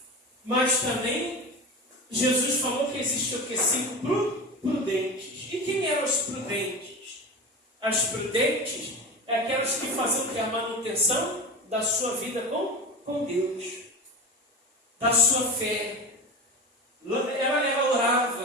Mas também, Jesus falou que existe o que? 5 prudentes. E quem eram os prudentes? As prudentes é aquelas que faziam a manutenção da sua vida com Deus. Da sua fé. Ela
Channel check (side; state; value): both; normal; correlation 0.28